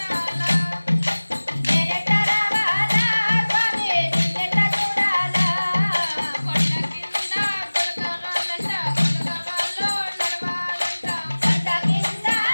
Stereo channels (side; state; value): both; inverted; correlation -1.00